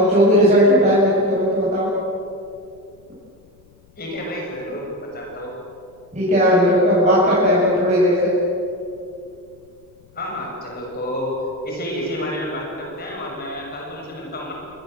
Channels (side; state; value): left; noise; rumble, 30 dB below the sound